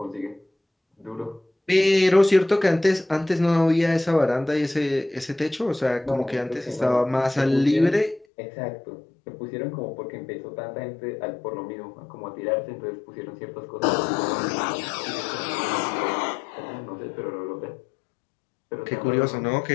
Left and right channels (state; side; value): drops out; right; at 8.2 s